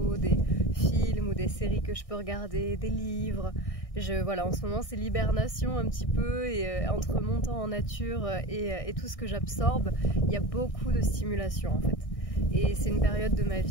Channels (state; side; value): late; right; 1.6 ms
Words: des films ou des séries que je peux regarder, des livres. Voilà, en ce moment c'est l'hibernation un petit peu et entre mon temps en nature et tout ce que j'absorbe, il y a beaucoup de stimulation en fait. Et c'est une période de ma